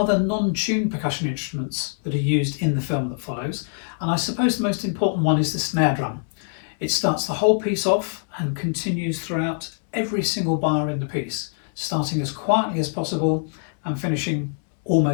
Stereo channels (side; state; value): right; silent; 63 dB below the other